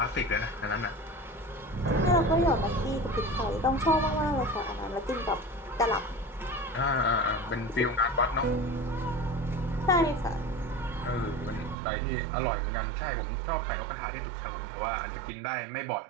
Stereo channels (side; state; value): left; drops out; at 11.8 s